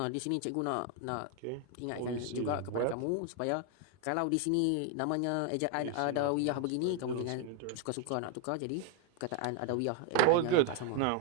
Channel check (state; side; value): different; both; correlation 0.01